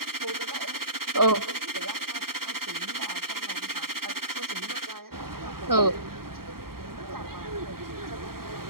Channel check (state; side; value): late; left; 0.93 ms